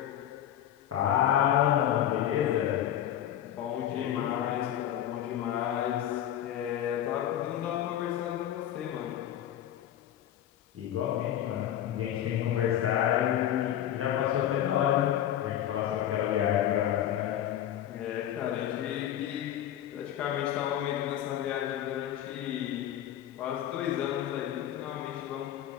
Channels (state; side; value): quieter; right; 11.2 dB